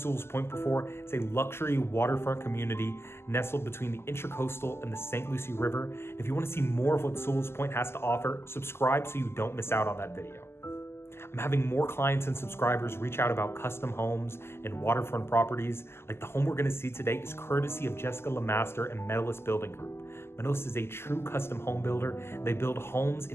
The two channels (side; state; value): right; late; 0.12 ms